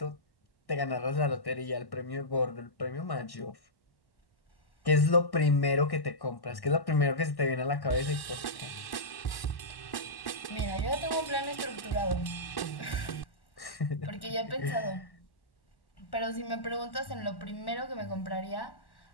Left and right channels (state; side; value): late; right; 1.1 ms